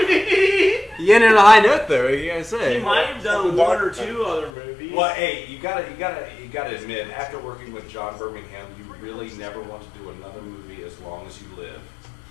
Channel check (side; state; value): right; drops out; at 4.5 s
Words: You ended on a high note, though. What you gotta say? He might have done one or two other movies. Well, hey, you gotta admit, after working with John Birmingham, you really never want to do another movie as long as you live.